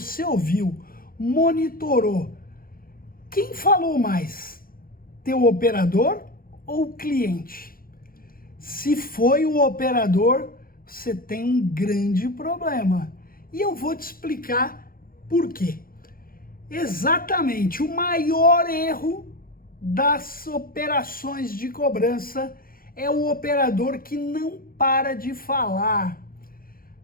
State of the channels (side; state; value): right; late; 0.42 ms